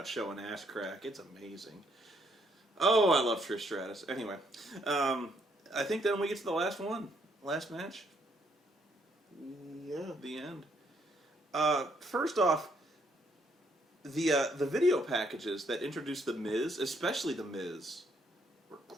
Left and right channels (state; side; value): normal; both; correlation 0.71